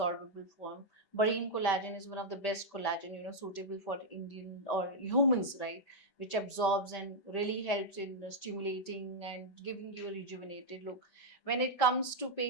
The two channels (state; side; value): late; right; 5.1 ms